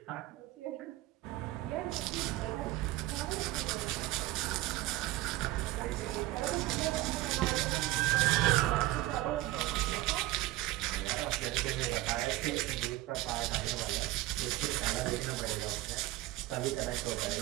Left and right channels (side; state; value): left; quieter; 17.2 dB